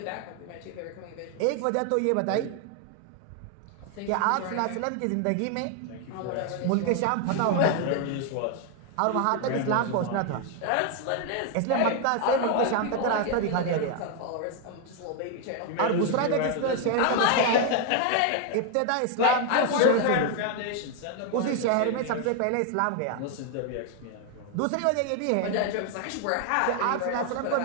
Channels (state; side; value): different; both; correlation 0.00